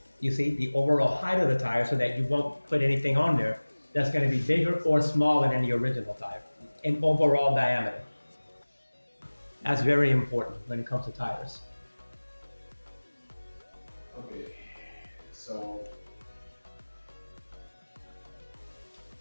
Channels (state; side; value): inverted; both; correlation -1.00